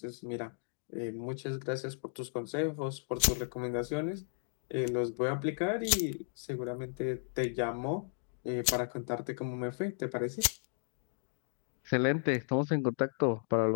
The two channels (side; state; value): right; silent; digital silence